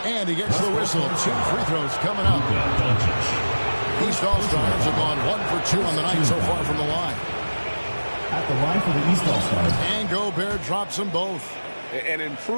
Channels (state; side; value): inverted; both; correlation -1.00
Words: And he gets the whistle. 2 free throws coming up. East All-Stars have gone 1 for 2 on the night so far from the line. At the line for the East All-Stars. And Gobert drops them both. An